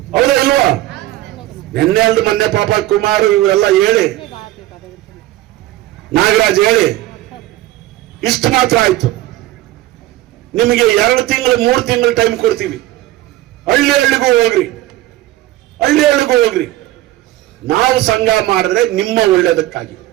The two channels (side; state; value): left; quieter; 15.8 dB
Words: ಹೌದಾ ಇಲ್ವಾ? ನಿನ್ನೆ ಅಲ್ದು ಮೊನ್ನೆ ಪಾಪ ಕುಮಾರ್ ಇವೆಲ್ಲ ಹೇಳಿ, ನಾಗರಾಜ್ ಹೇಳಿ ಇಷ್ಟು ಮಾತ್ರ ಆಯ್ತು. ನಿಮಗೆ 2 ತಿಂಗಳು 3 ತಿಂಗಳು ಟೈಮ್ ಕೊಡ್ತೀವಿ. ಹಳ್ಳಿ ಹಳ್ಳಿಗೂ ಹೋಗ್ರಿ, ಹಳ್ಳಿ ಹಳ್ಳಿಗೂ ಹೋಗ್ರಿ. ನಾವು ಸಂಘ ಮಾಡಿದ್ರೆ ನಿಮ್ಮ ಒಳ್ಳೇದಕ್ಕಾಗಿ,